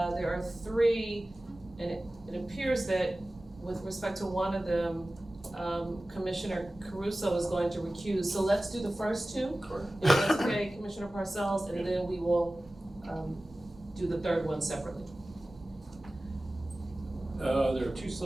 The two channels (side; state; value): both; normal; correlation 0.97